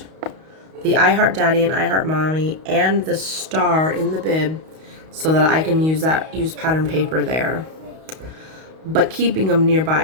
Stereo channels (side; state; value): left; late; 32 ms